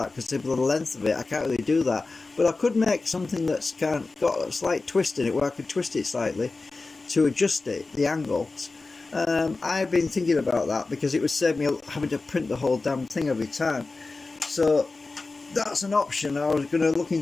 because of the length of it. I can't really do that, but I could make something that's got a slight twist in it where I could twist it slightly to adjust it, the angles. I've been thinking about that because it would save me having to print the whole damn thing every time. So that's an option. I was going to look in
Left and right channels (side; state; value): right; quieter; 3.6 dB